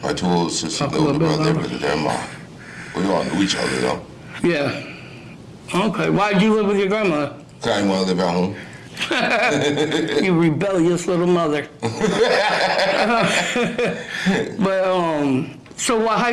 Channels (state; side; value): identical; both; correlation 1.00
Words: my 2 older sisters, the older brother, lived with their mom. We all knew each other though. Yeah. Okay. Why'd you live with your grandmother? Cause I didn't want to live at home. You rebellious little mother. But so what